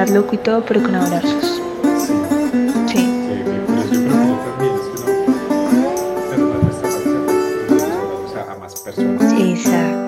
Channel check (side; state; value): both; identical; correlation 1.00